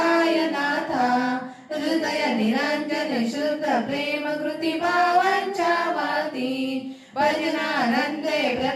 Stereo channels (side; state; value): both; identical; correlation 1.00